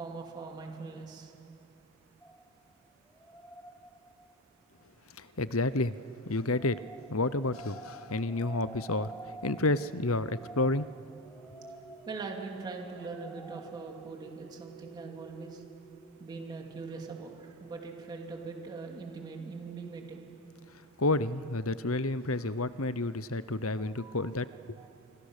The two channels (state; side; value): normal; both; correlation 0.17